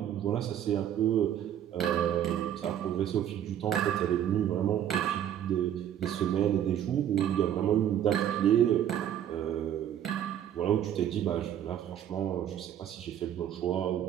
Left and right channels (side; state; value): left; quieter; 10.4 dB